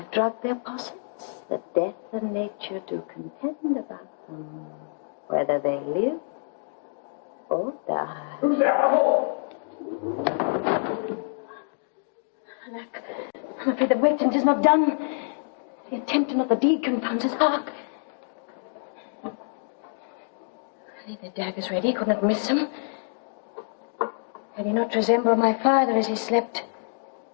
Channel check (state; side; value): silent; right; digital silence